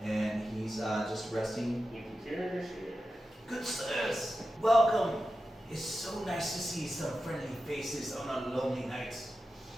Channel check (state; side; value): normal; both; correlation 0.92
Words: and he's just resting. You can carry this here. Good sirs, welcome. It's so nice to see some friendly faces on a lonely night.